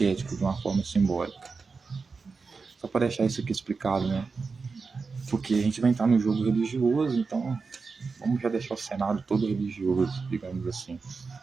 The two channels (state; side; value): quieter; left; 4.6 dB